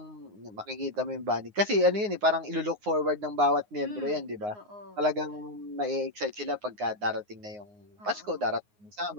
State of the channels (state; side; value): late; left; 9.6 ms